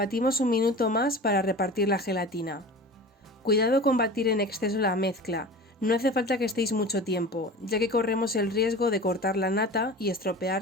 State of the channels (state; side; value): normal; both; correlation 0.35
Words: un minuto más para repartir la gelatina. Cuidado con batir en exceso la mezcla, no hace falta que estéis mucho tiempo, ya que corremos el riesgo de cortar la nata y